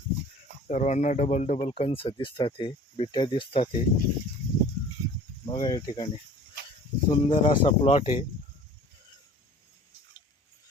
सर्वांना डबल डबल कंस दिसतात. हे बिट्या दिसतात. हे बघा या ठिकाणी सुंदर असा प्लॉट आहे.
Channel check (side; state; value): both; normal; correlation 0.46